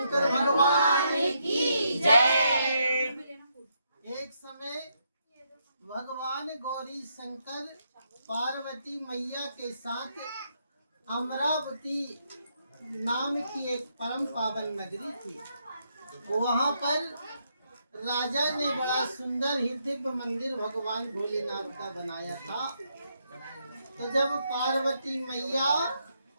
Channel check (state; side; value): inverted; both; correlation -0.78